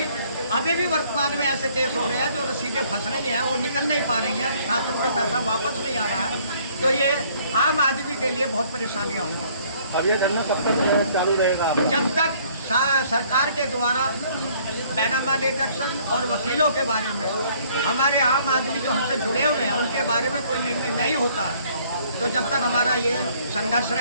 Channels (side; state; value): both; inverted; correlation -0.60